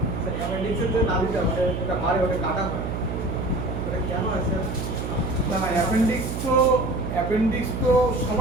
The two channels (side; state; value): right; noise; hum, 4 dB below the sound